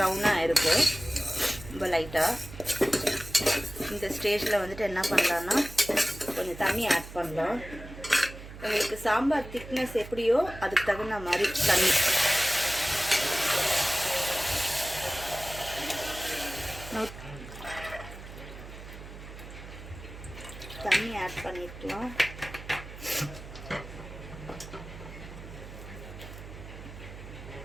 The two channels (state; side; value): noise; right; hum, 14 dB below the sound